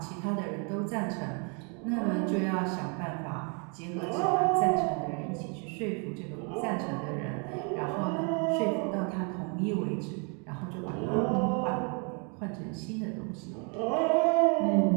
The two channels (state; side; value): quieter; left; 36.3 dB